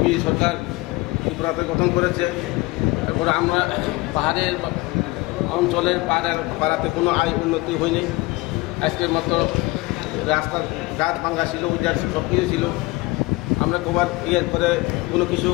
সরকার ত্রিপুরাতে গঠন করেছে। তারপরে আমরা পাহাড়ের অঞ্চলের পাড়াতে কোনো আয় উন্নতি হয়নি। আজকের মতো রাস্তার গাছ ভাঙ্গা ছিল, উজার সব কিছু ছিল। আমরা কবার ক্লিয়ার করে কোনো কিছু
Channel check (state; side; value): quieter; right; 22.5 dB